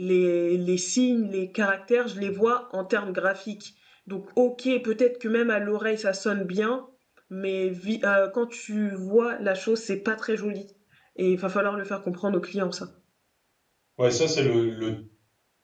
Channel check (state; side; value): identical; both; correlation 1.00